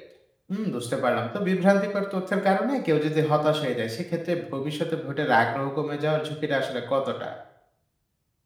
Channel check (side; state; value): both; identical; correlation 1.00